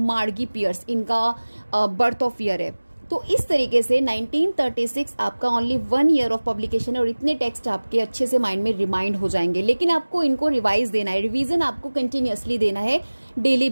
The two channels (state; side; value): inverted; both; correlation -1.00